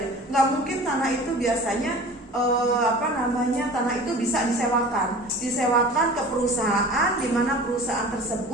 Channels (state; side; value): normal; both; correlation 0.41